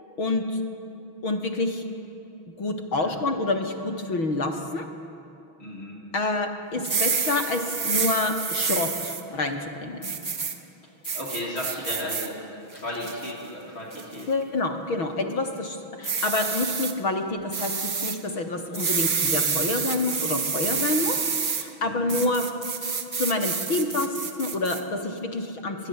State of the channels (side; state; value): right; late; 6.2 ms